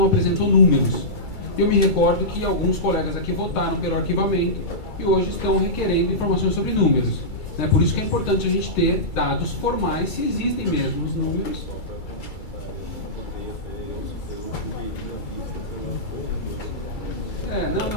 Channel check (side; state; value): right; late; 2.3 ms